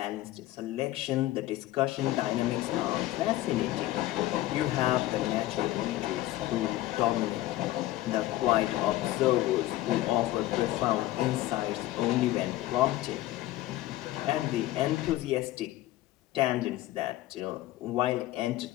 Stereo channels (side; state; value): right; quieter; 15.9 dB